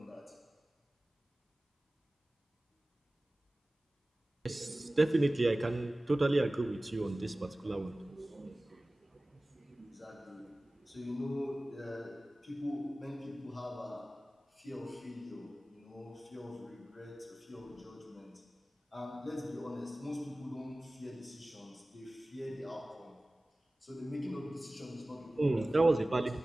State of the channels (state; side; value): normal; both; correlation 0.97